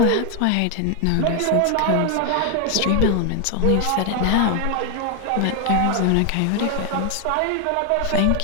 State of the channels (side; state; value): both; different; correlation 0.01